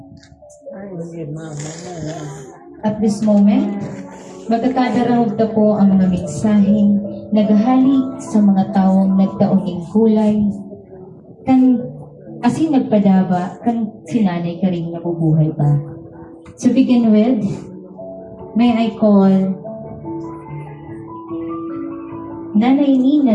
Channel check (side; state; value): both; identical; correlation 1.00